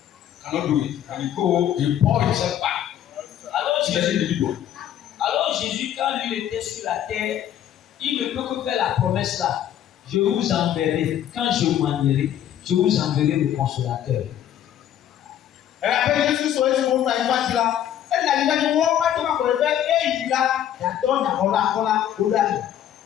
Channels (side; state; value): right; quieter; 10.8 dB